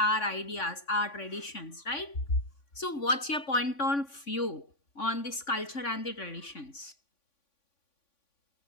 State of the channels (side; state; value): right; late; 3.5 ms